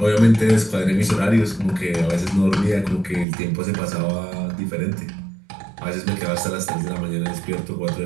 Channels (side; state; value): left; drops out; at 3.2 s